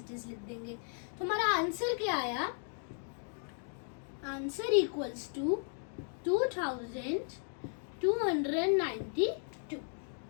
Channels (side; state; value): right; silent; 54 dB below the other